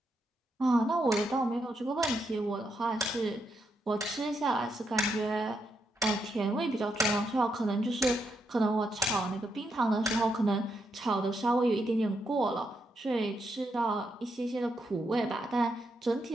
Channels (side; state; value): both; normal; correlation 0.81